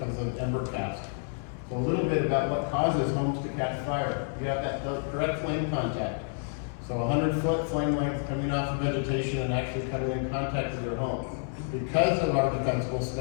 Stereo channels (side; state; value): right; silent; 58 dB below the other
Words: of ember cast. So a little bit about what causes homes to catch fire. You have that direct flame contact. So 100-foot flame length coming off of vegetation and actually coming in contact with your home. Because of our defensible